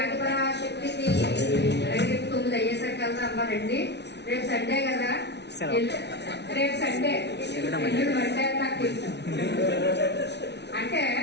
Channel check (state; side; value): late; right; 0.50 ms